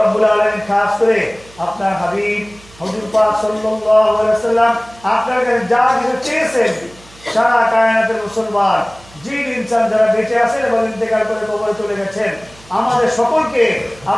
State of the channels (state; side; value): noise; right; hum, 24 dB below the sound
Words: আলামিন খাস করে আপনার হাবিব হুজুর পাক সাল্লাল্লাহু আলাইহি সাল্লাম আপনার কাছে যা কিছু চেয়েছেন সারা কায়নাতের মুসলমান জিন ইনসান যারা বেঁচে আছেন এবং ইন্তেকাল করে কবরে চলে গেছেন আমাদের সকলকে